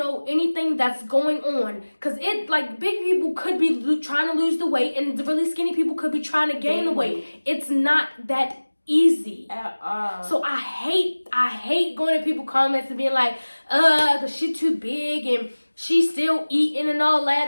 anything that's going on. Because big people could be trying to lose the weight and the really skinny people could be trying to gain the weight. It's not that easy at all. So I hate going to people comments and being like, cause she's too big and she's still eating and all that,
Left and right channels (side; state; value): both; inverted; correlation -1.00